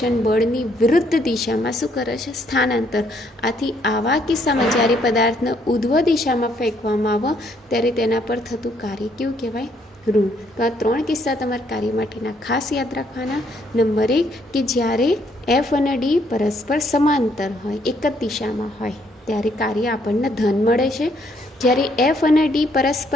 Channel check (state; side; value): normal; both; correlation 0.69